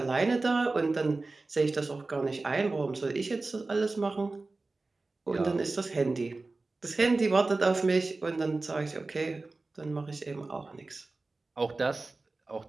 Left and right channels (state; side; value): quieter; left; 3.4 dB